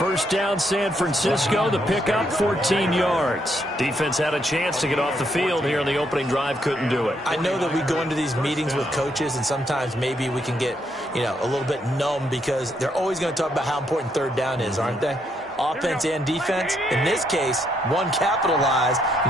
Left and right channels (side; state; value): both; normal; correlation 0.75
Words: down, San Francisco. The pickup, 14 yards. Defense had a chance to get off the field here on the opening drive. Couldn't do it. I know that we go into these meetings with coaches, and sometimes maybe we can get, a little bit numb because they're always going to talk about how important third down is, aren't they? Offense and defense. In this case, one capitalized,